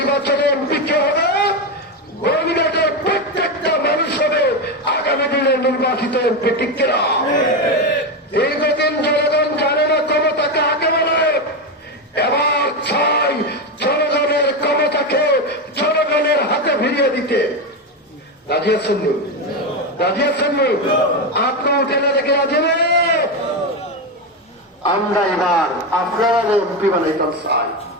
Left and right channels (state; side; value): normal; both; correlation 0.12